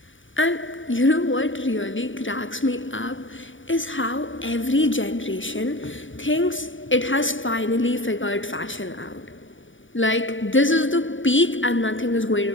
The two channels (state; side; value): late; right; 0.56 ms